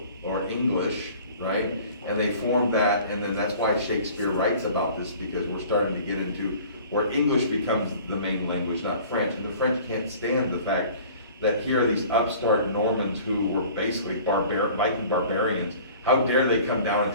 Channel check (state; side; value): inverted; both; correlation -0.47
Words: or English, right? And they formed that, and then that's why Shakespeare writes about this, because we're starting to get into where English becomes the main language, not French, and the French can't stand the fact that here are these upstart Normans who were basically Viking barbarians. How dare they come down and